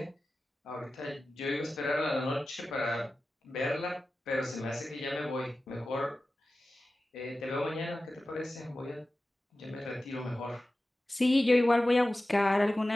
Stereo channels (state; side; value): normal; both; correlation 0.95